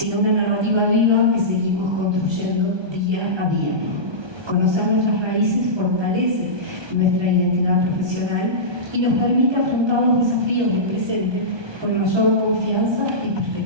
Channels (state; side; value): late; left; 1.2 ms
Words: una narrativa viva que seguimos construyendo día a día. Conocer nuestras raíces fortalece nuestra identidad profesional y nos permite afrontar los desafíos del presente con mayor confianza y